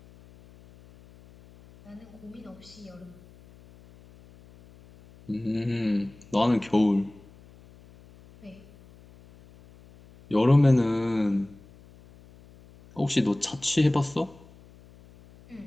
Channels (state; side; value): noise; left; hum, 24 dB below the sound